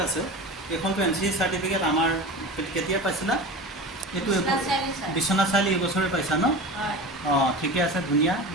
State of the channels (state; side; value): normal; both; correlation 0.31